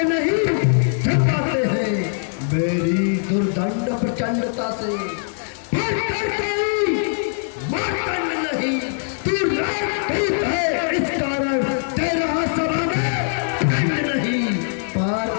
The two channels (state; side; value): silent; right; digital silence